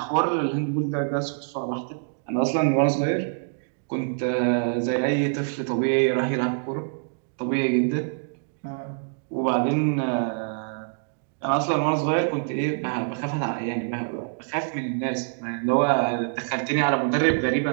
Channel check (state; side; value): silent; left; digital silence